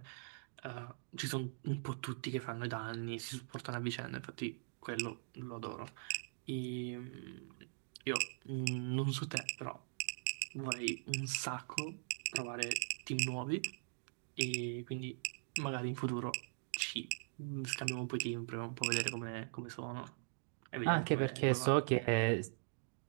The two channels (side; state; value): left; silent; digital silence